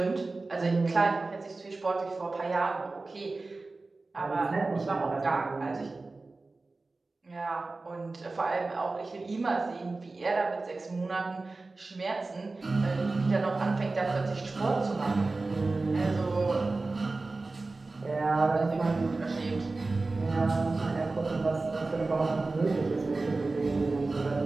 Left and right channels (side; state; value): left; quieter; 3.5 dB